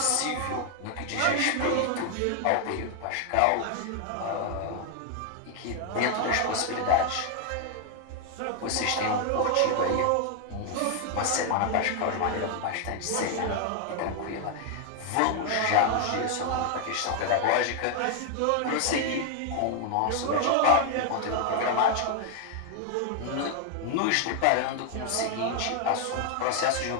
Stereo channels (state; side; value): different; both; correlation 0.00